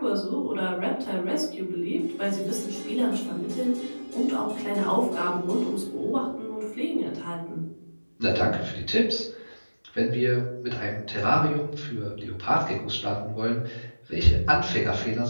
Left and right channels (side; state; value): both; inverted; correlation -1.00